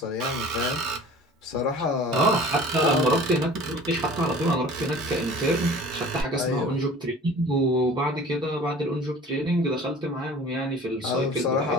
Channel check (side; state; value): both; normal; correlation 0.44